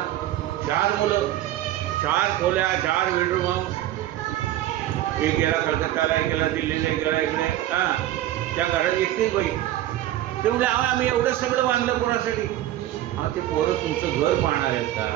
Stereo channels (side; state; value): left; quieter; 13.8 dB